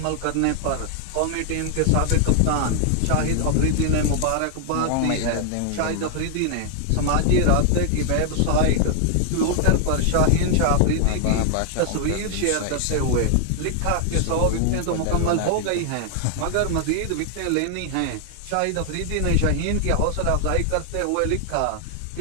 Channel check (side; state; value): both; different; correlation 0.00